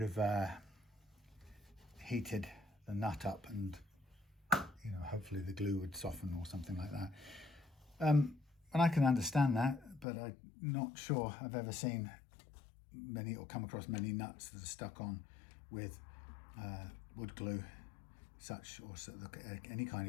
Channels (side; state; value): right; drops out; at 10.1 s